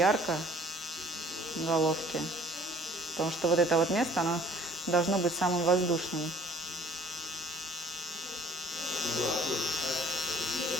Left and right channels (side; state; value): both; normal; correlation 0.55